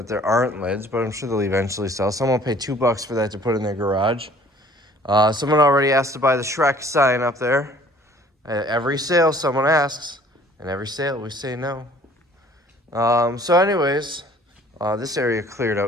there aren't lids, but I'm sure they'll eventually sell. Someone will pay $2 for that to put in their garage. Someone already asked to buy the Shrek sign up there. At every sale, someone asks, and every sale we say no. So anyways, this area cleared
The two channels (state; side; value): normal; both; correlation 0.54